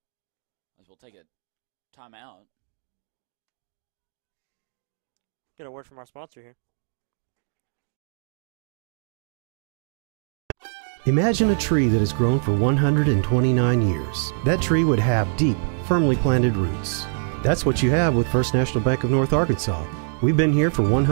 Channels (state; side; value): silent; left; digital silence